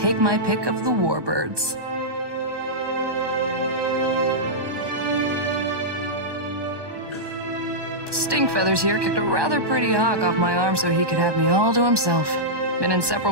my pick of the warbirds. Stinkfeathers here kicked a rather pretty hawk off my arm so he could have me all to himself. Been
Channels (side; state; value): left; late; 1.2 ms